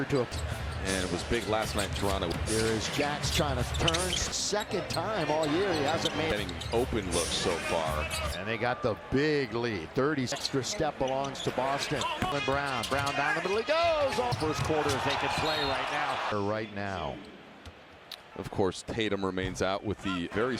to. And it was big last night in Toronto. There is Jax trying to turn. Second time all year he hasn't made. Getting open looks so far. And they got the big lead. 30 extra step belongs to Boston. Brown down the middle. He goes. All first quarters they can play right now. Of course, Tatum remains out with the very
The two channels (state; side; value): identical; both; correlation 1.00